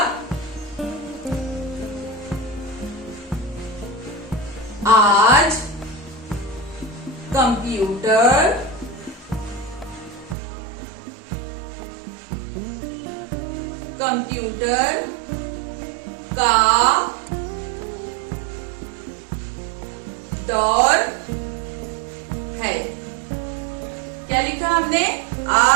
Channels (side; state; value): left; drops out; at 10.4 s